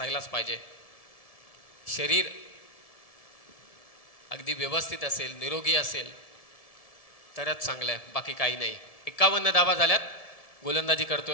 पाहिजे. शरीर अगदी व्यवस्थित असेल, निरोगी असेल तरच चांगलं आहे, बाकी काही नाही. 51 धावा झाल्यात. गोलंदाजी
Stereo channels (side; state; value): right; late; 1.7 ms